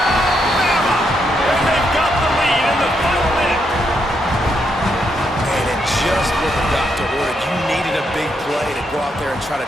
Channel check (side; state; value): both; normal; correlation 0.79